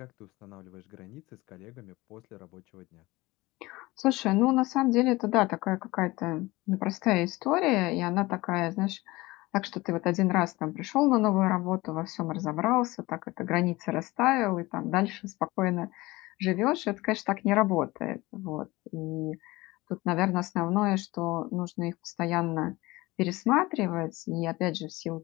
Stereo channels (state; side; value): quieter; right; 20.7 dB